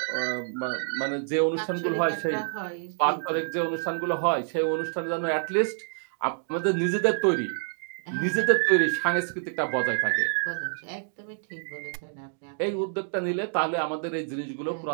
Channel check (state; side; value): silent; left; digital silence